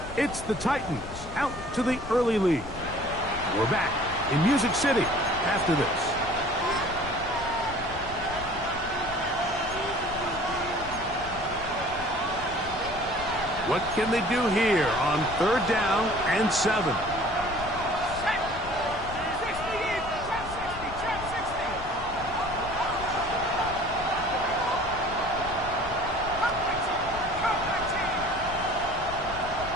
It's the Titans out to the early lead. We're back in Music City after this. What can they do here on 3rd down and 7?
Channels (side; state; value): left; noise; rumble, 13 dB below the sound